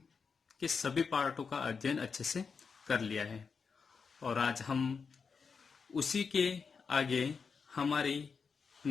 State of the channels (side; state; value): right; quieter; 5.5 dB